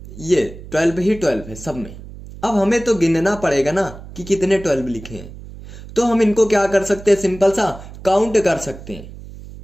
ये 12 ही 12 है सब में। अब हमें तो गिनना पड़ेगा ना कि कितने 12 लिखे हैं। तो हम इनको क्या कर सकते हैं? सिंपल सा काउंट कर सकते हैं।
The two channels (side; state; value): right; noise; hum, 15 dB below the sound